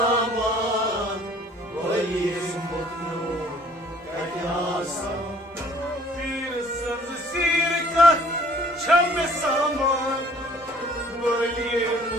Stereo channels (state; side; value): normal; both; correlation 0.56